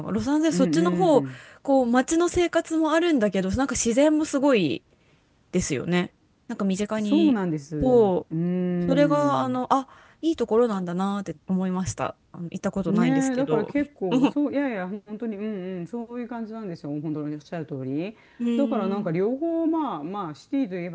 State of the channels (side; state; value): both; identical; correlation 1.00